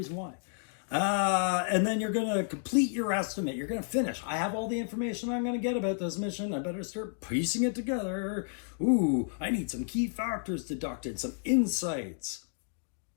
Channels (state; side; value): silent; right; digital silence